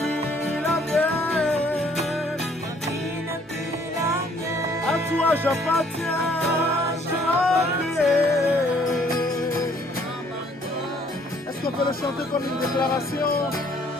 la mienne. À toi j'appartiens. Est-ce qu'on peut le chanter comme une déclaration?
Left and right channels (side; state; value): both; normal; correlation 0.62